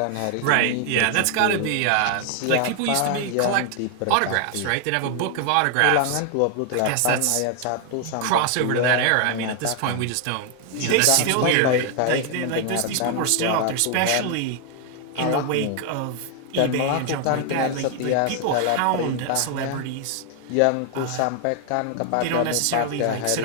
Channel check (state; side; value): different; both; correlation 0.00